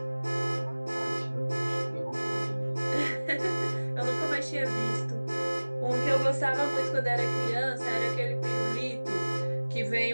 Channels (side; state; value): both; inverted; correlation -1.00